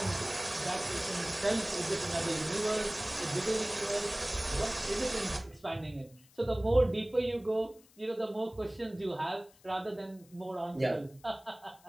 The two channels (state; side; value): noise; left; hiss, 27 dB below the sound